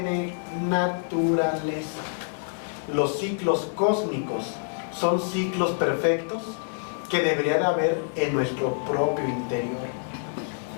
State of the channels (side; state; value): right; silent; digital silence